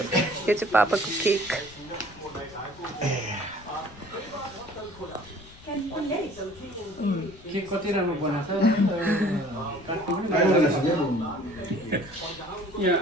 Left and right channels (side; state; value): left; noise; rumble, 21 dB below the sound